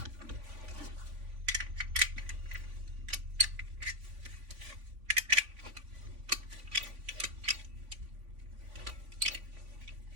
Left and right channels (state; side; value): late; left; 3.5 ms